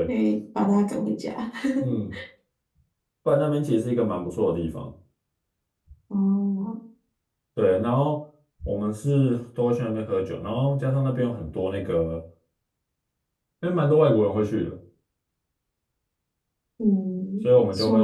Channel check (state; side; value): identical; both; correlation 1.00